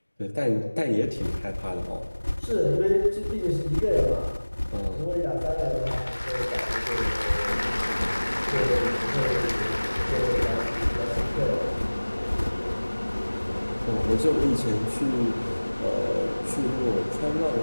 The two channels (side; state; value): both; inverted; correlation -1.00